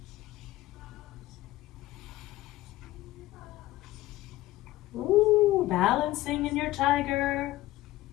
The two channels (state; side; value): quieter; right; 16.5 dB